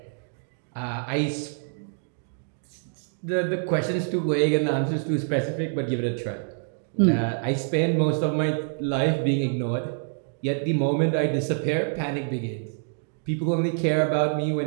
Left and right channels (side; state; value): left; silent; digital silence